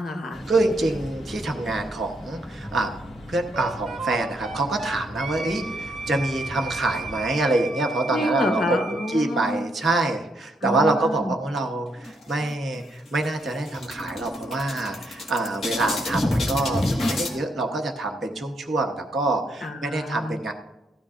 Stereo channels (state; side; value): normal; both; correlation 0.76